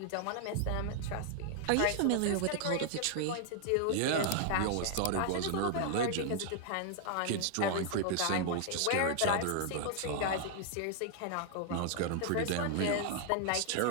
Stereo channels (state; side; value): different; both; correlation 0.00